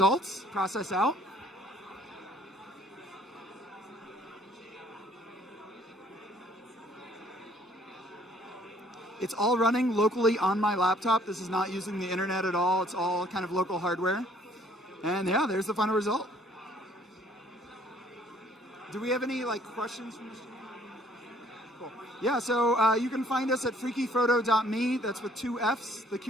process out. It's all running locally on my laptop. This is not using the internet at all. It's all kind of local hardware. And yeah, there's the final result. Do we have any questions from the stream? Cool. Yeah, so you can find us at freakyphoto.me. That's with 2 Fs. The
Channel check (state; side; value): normal; both; correlation 0.60